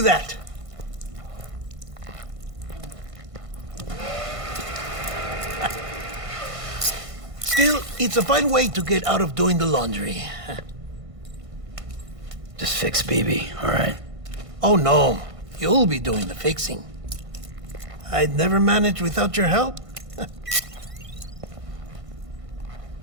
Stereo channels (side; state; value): left; late; 1.5 ms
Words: that. Still, it's a fine way to get out of doing the laundry. Just fix BB, all right? Oh, no. You'll be doing the fixing. I'd never manage without your help.